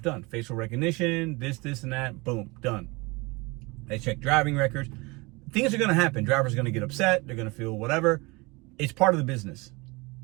done. Facial recognition, this, and that, boom, done. They check driving records. Things are going to happen. Drivers are going to get upset. They're going to feel whatever. It's part of the business.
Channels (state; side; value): quieter; left; 25.4 dB